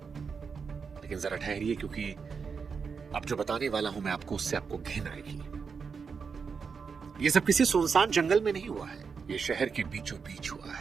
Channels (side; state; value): left; quieter; 5.7 dB